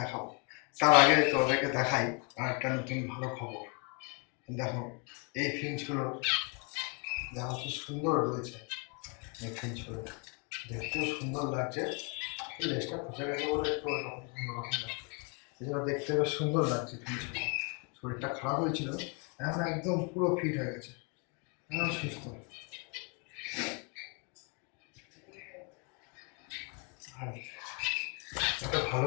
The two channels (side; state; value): right; quieter; 34.8 dB